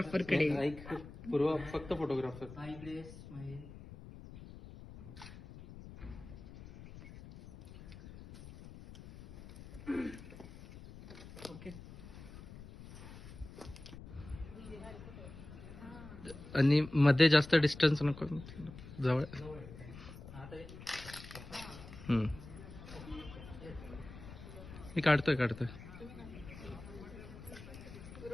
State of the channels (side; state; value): left; noise; rumble, 15 dB below the sound